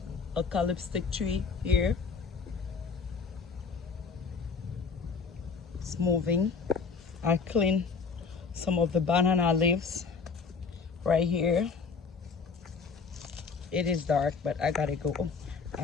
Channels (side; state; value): right; quieter; 5.2 dB